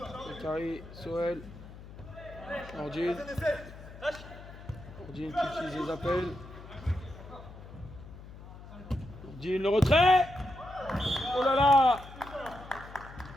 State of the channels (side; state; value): left; noise; hum, 16 dB below the sound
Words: Bakary, Soel. Nordine. Nordine qui utilise les appels. Nordine, le retrait. Oh là là.